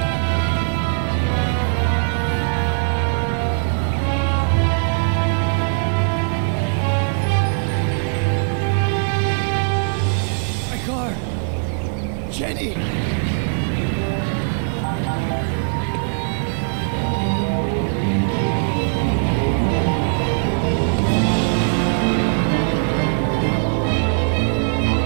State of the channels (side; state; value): left; silent; 66 dB below the other